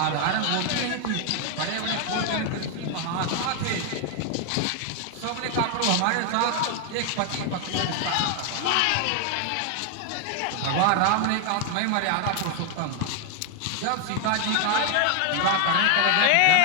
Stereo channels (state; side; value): different; both; correlation 0.00